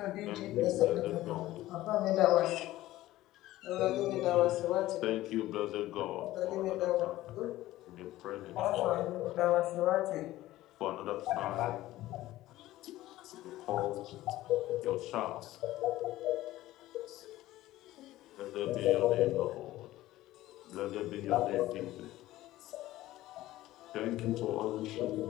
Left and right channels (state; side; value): quieter; right; 15.9 dB